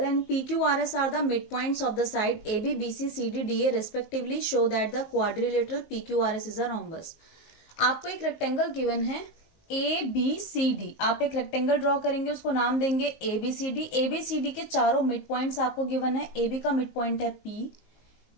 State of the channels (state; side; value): late; right; 19 ms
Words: and PQRS are the midpoints of the side AB, BC, CD, DA respectively show that the quadrilateral PQRS is a rhombus. आपको एक rectangle given है ABCD. आप एक rectangle draw करेंगे, उसको नाम देंगे ABCD. ABCD के चारों मिड पॉइंट्स आपको गिवन है. AB का मिड पॉइंट है P,